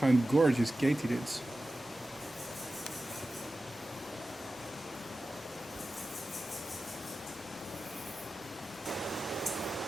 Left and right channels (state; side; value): normal; both; correlation 0.94